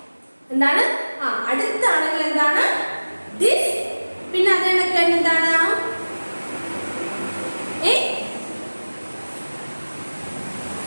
എന്താണ്? അടുത്താണെങ്കിൽ എന്താണ്? ദിസ്. പിന്നെ അതിനൊക്കെ എന്താണ്?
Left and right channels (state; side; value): inverted; both; correlation -1.00